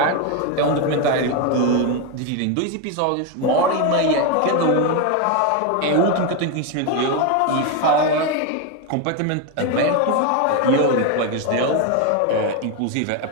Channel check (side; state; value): both; different; correlation 0.02